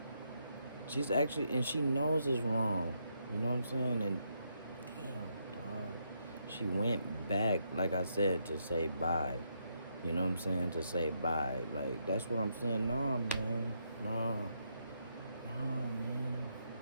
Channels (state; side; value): inverted; both; correlation -0.77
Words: She's actually, and she knows it's wrong. You know what I'm saying? And damn, dog. She went back, like I said, to say bye. You know what I'm saying? To say bye. Like, that's what I'm saying. Nah, man. Nah, man.